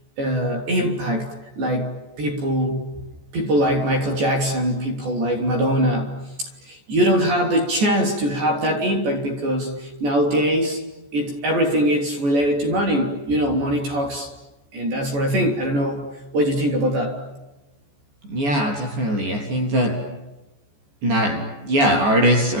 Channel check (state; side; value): late; left; 14 ms